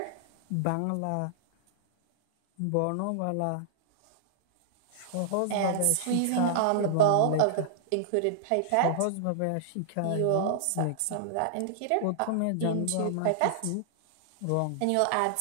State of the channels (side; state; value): both; different; correlation -0.01